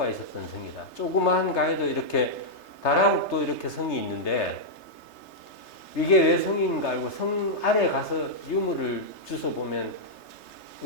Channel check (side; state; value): right; late; 3.3 ms